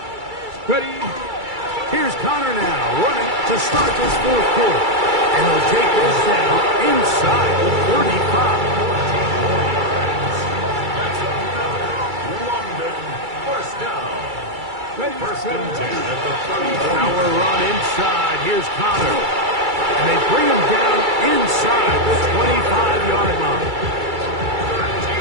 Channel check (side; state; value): left; late; 2.3 ms